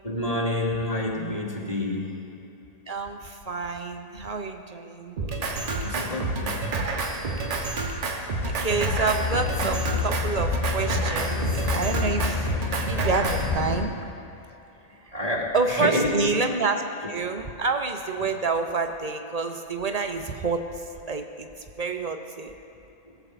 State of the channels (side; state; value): right; late; 1.8 ms